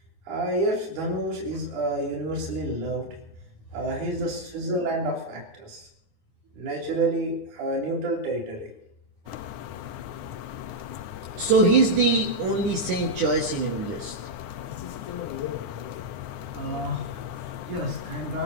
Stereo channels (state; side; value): late; left; 9.8 ms